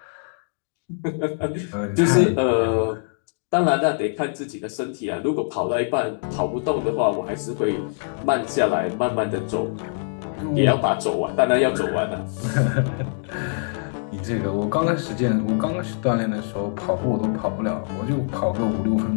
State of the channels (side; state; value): right; silent; digital silence